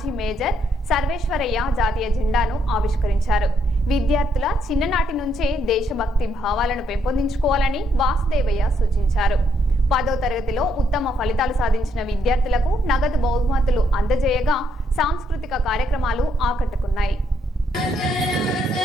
మేజర్ సర్వేశ్వరయ్య జాతీయ జెండాను ఆవిష్కరించారు. విద్యార్థుల చిన్ననాటి నుంచే దేశభక్తి భావాలను పెంపొందించుకోవాలని వాసుదేవయ్య సూచించారు. 10వ తరగతిలో ఉత్తమ ఫలితాలు సాధించిన విద్యార్థులకు నగదు బహుమతులు అందజేయగా సాంస్కృతిక కార్యక్రమాలు ఆకట్టుకున్నాయి.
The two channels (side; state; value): both; normal; correlation 0.74